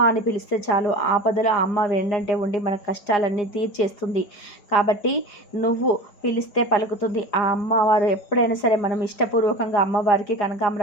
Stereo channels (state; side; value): late; right; 4.9 ms